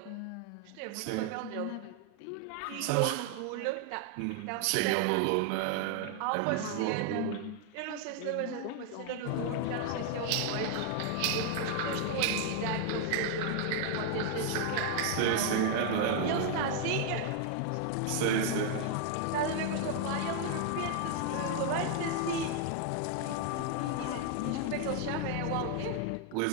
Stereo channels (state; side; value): different; both; correlation 0.00